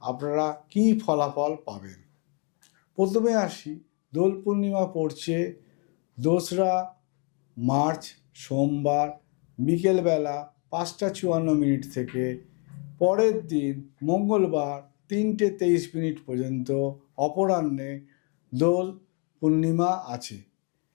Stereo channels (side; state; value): right; quieter; 36.1 dB